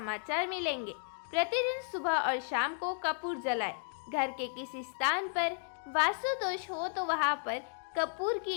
मिलेंगे। प्रतिदिन सुबह और शाम को कपूर जलाए। घर के किसी स्थान पर वास्तु दोष हो तो वहां पर कपूर की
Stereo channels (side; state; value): right; silent; 55 dB below the other